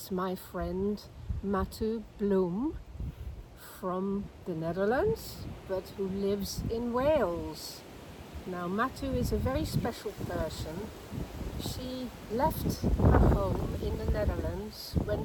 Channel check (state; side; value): identical; both; correlation 1.00